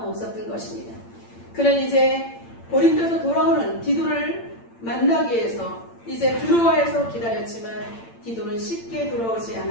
없었던 것입니다. 그는 이제 고린도에서 돌아오는 디도를 마나기 위해서 이제 드로아에서 기다렸지만 디도는 쉽게 돌아오지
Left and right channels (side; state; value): right; late; 8.8 ms